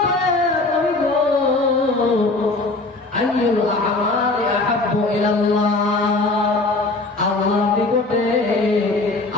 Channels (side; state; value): right; quieter; 3.2 dB